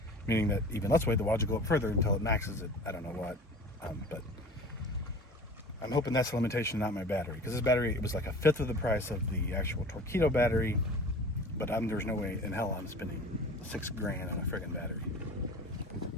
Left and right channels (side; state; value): both; normal; correlation 0.40